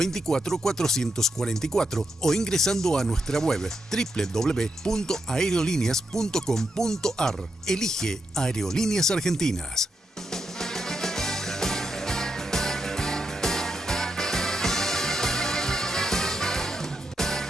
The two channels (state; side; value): normal; both; correlation 0.84